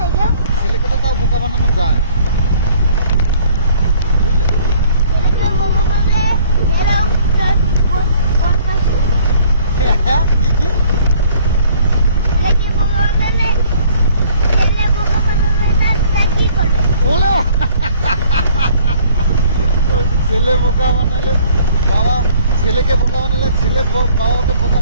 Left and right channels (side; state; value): both; inverted; correlation -0.56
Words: ছেলেকে তো তাও বোকা বানানো যায়, বুঝলে? কি ছেলে বোকা বানালে বাবা, ছেলেকে বোকা বানালে ছেলে বাবাকে বোকা